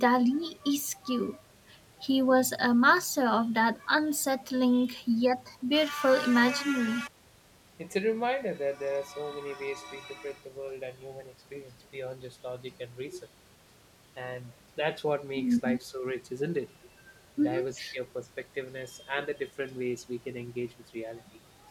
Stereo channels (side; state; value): both; identical; correlation 1.00